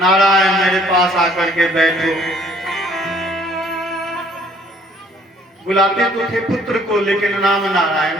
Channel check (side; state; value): both; normal; correlation 0.59